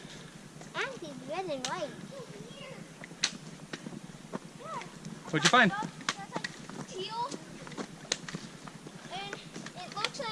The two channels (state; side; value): identical; both; correlation 1.00